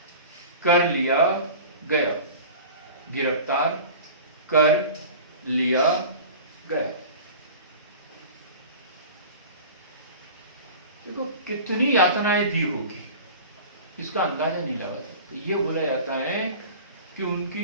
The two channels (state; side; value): inverted; both; correlation -0.38